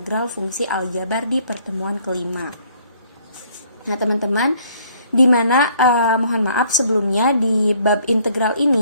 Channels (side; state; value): both; inverted; correlation -0.62